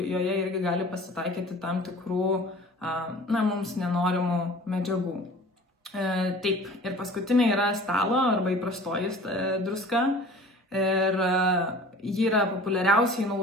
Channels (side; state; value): both; normal; correlation 0.44